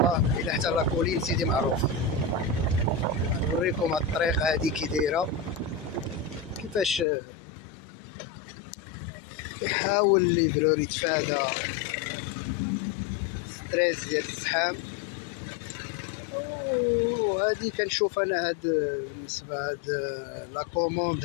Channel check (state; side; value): drops out; right; at 7.1 s